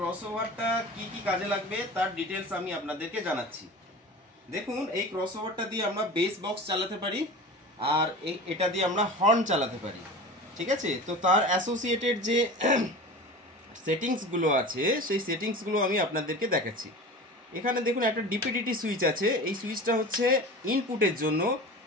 কি কি কাজে লাগবে তার ডিটেলস আমি আপনাদেরকে জানাচ্ছি। দেখুন, এই ক্রসওভারটা দিয়ে আমরা বেস বক্স চালাতে পারি, আর এটা দিয়ে আমরা হর্ন চালাতে পারি। ঠিক আছে, তো তার অ্যাসোসিয়েটেড যে সেটিংসগুলো আছে সেই সেটিংসগুলো আমি আপনাদেরকে দেখাচ্ছি। এখানে দেখুন একটা ডিপিডিটি সুইচ আছে। এই সুইচটা হচ্ছে ইনপুটের জন্য।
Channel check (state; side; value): normal; both; correlation 0.34